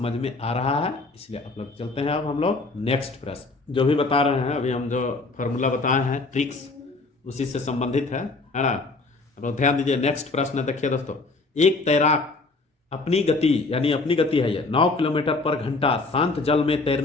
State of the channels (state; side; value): quieter; right; 3.6 dB